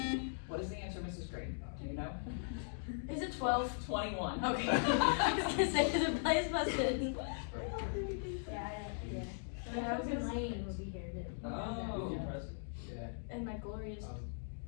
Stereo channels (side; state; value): right; silent; digital silence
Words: What is the answer, Mrs. Green? Do you know? Is it 12? 21. Okay. I was gonna say, cause it plays busted. Yeah. And I was in Lane will be here too. Oh. Yeah. And my glorious.